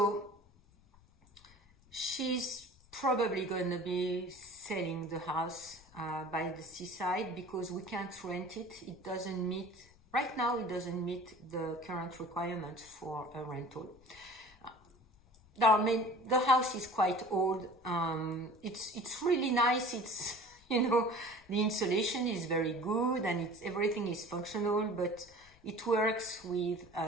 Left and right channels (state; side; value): noise; left; rumble, 27 dB below the sound